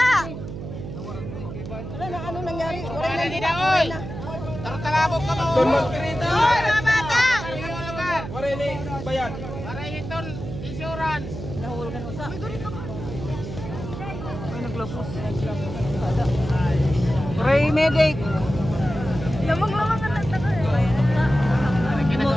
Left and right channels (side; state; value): right; noise; hum, 9 dB below the sound